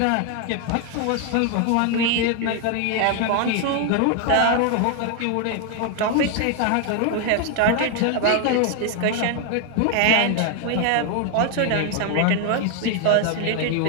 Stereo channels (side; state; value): both; different; correlation 0.01